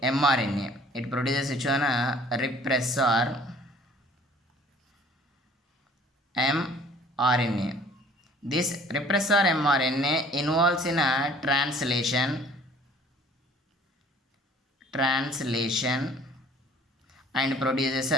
mRNA. It produces which one repressor mRNA. This repressor mRNA involves in a translation and produces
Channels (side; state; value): both; normal; correlation 0.53